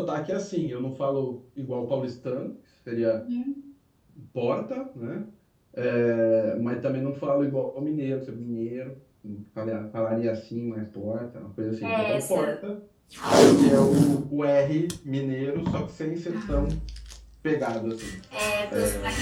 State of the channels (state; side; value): identical; both; correlation 1.00